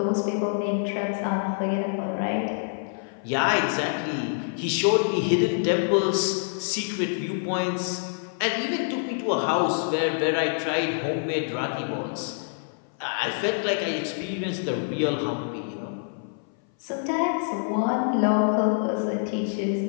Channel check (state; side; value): silent; right; 58 dB below the other